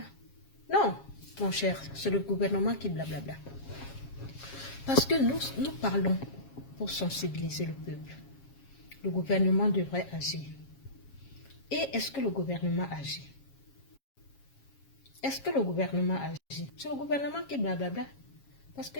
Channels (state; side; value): late; right; 7.3 ms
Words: Non, mon cher, c'est le gouvernement qui blablabla. Parce que nous parlons pour sensibiliser le peuple. Le gouvernement devrait agir. Et est-ce que le gouvernement agit? Est-ce que le gouvernement agit? C'est le gouvernement qui blablabla. Parce